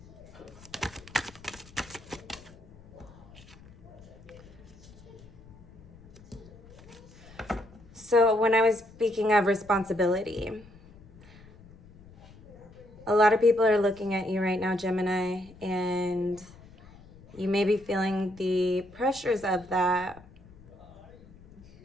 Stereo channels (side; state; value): left; noise; rumble, 22 dB below the sound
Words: So when I was speaking of responsibility, a lot of people are looking at you right now, Gemini, and you may be feeling the pressures of that,